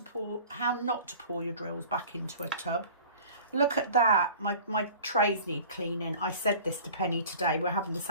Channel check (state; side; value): inverted; both; correlation -0.44